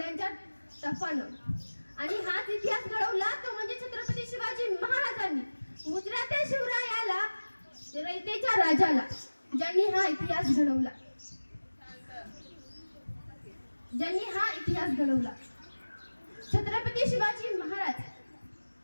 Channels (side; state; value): both; inverted; correlation -1.00